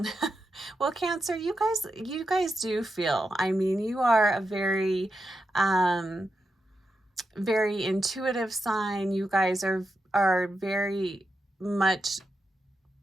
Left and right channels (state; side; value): normal; both; correlation 0.87